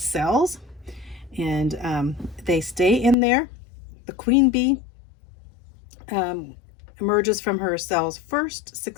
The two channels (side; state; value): right; drops out; at 3.2 s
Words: and they stay in there. The queen bee emerges from her cells first,